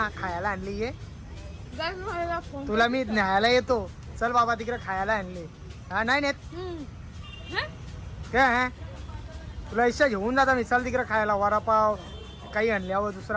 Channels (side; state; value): both; identical; correlation 1.00